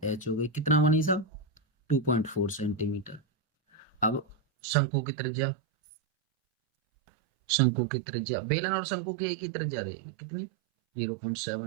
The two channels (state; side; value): drops out; left; at 4.4 s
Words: एच हो गई, कितना बनी साहब 2.4 सेंटीमीटर। अब शंकु की त्रिज्या, शंकु की त्रिज्या, बेलन और शंकु की एक ही त्रिज्या रहेगी, कितनी